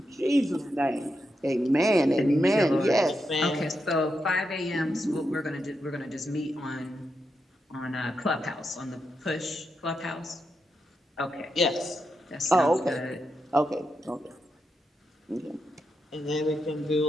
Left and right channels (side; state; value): both; normal; correlation 0.85